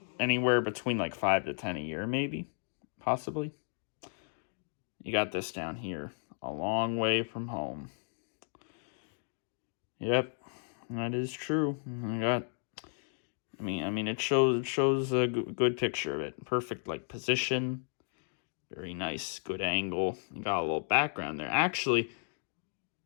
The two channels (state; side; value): silent; right; 55 dB below the other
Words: anywhere between like 5 to 10 a year, maybe, possibly. You got this down here, a long way from home. Yep, that is true. I mean, it shows a good picture of it. Perfect, like, position. Very nice, good angle. You got a little background there. Actually,